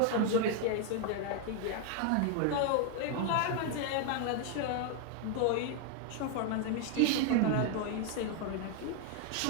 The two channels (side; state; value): both; different; correlation 0.00